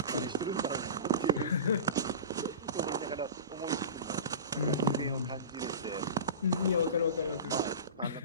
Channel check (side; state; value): both; inverted; correlation -0.31